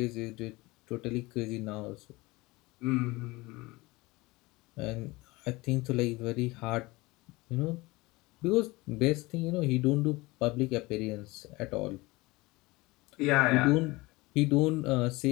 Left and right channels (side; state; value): right; quieter; 22.1 dB